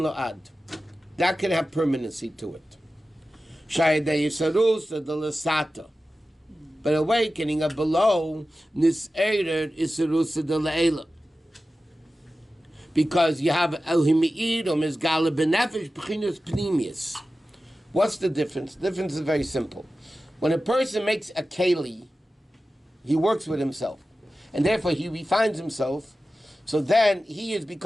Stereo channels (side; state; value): both; normal; correlation 0.94